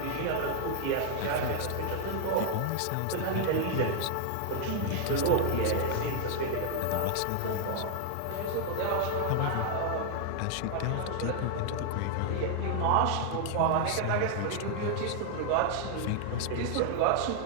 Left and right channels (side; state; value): both; different; correlation 0.00